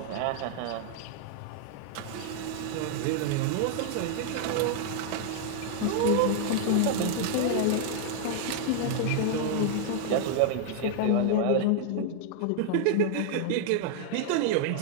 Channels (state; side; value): different; both; correlation 0.00